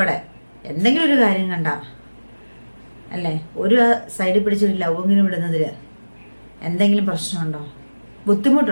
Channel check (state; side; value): inverted; both; correlation -1.00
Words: എന്തെങ്കിലും ഒരു കാര്യം കണ്ട, അല്ലേ, ഒരു സൈഡിൽ പിടിച്ചൊരു ലവെങ്കിലും ഇടുന്നതിൽ എന്തെങ്കിലും പ്രശ്നമുണ്ടോ,